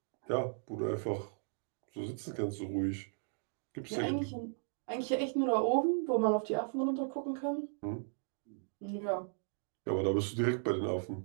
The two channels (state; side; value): silent; left; digital silence